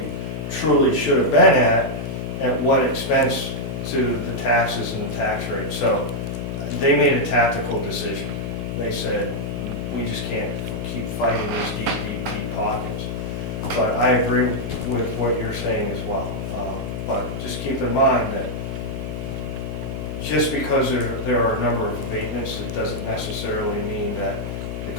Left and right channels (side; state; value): left; noise; hum, 5 dB below the sound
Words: truly should have been at what expense to the taxes and the tax rate. So they made a tactical decision. They said, we just can't keep fighting these deep pockets. But I agree with what you're saying as well. But just keep in mind that just because there are a number of abatements, it doesn't necessarily mean that the